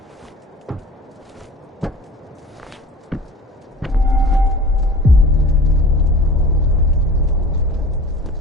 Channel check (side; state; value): both; normal; correlation 0.40